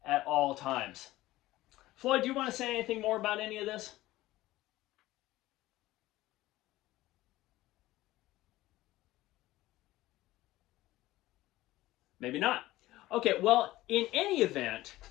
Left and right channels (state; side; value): quieter; right; 16.9 dB